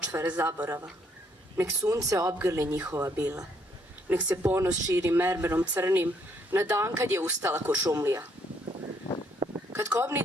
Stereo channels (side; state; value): both; normal; correlation 0.70